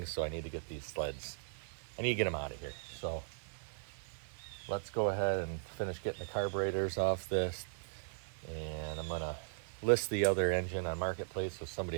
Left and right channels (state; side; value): silent; left; 52 dB below the other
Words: so I need to get these sleds. I need to get them out of here. So let's go ahead and finish getting the carburetors off this. And I'm gonna list the other engine on Marketplace so